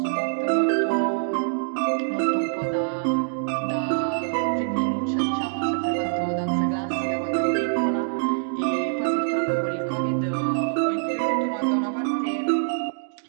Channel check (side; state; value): left; silent; digital silence